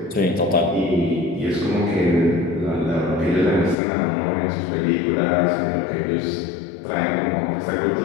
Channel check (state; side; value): drops out; right; at 3.8 s